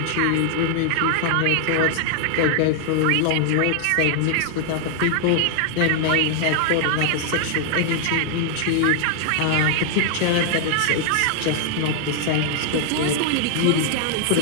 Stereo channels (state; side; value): different; both; correlation 0.00